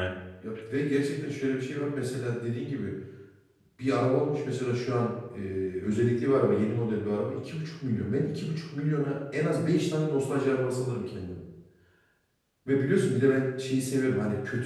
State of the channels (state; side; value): identical; both; correlation 1.00